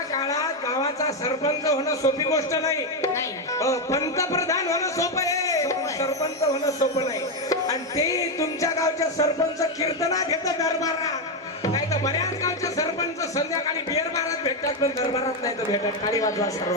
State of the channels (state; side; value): normal; both; correlation 0.06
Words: काळात गावाचा सरपंच होणं सोपी गोष्ट नाही. पंतप्रधान होणं सोपं आहे सरपंच होणं सोपं नाही. आणि ते तुमच्या गावच्या सरपंच कीर्तनात घेतं दरबारात. नाही तर बऱ्याच गावचे सरपंच संध्याकाळी बिअर बारात भेटतात पण दरबारात नाही तर भेटतात. टाळी वाजवा